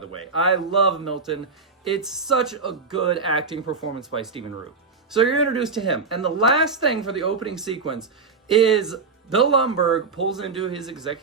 way. I love Milton. It's such a good acting performance by Stephen Root. So you're introduced to him. And the last thing for the opening sequence is Bill Lumbergh pulls into his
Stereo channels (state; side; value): quieter; left; 4.6 dB